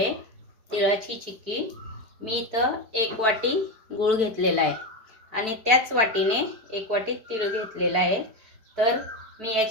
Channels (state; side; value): late; left; 4.6 ms